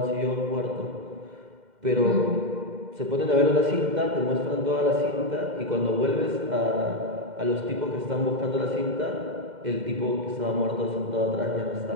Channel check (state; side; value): late; left; 2.1 ms